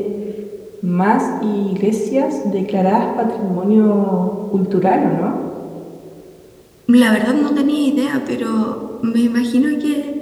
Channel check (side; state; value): both; identical; correlation 1.00